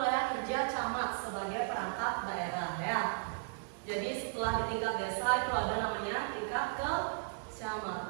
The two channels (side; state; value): left; silent; digital silence